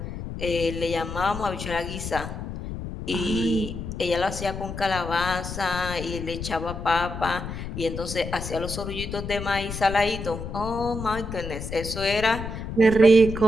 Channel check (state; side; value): noise; left; rumble, 7 dB below the sound